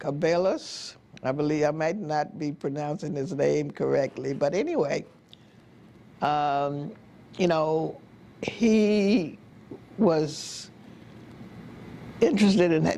I believe, I might not be pronouncing his name correctly, but anyway, you know, he was interested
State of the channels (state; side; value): identical; both; correlation 1.00